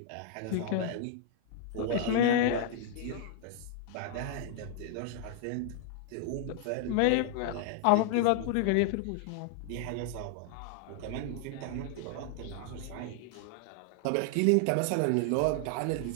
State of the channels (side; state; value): both; different; correlation 0.00